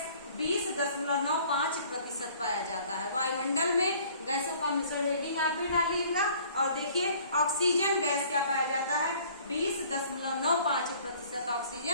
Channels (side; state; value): both; inverted; correlation -0.54